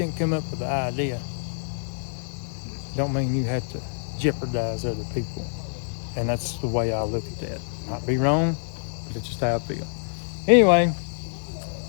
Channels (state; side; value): silent; right; digital silence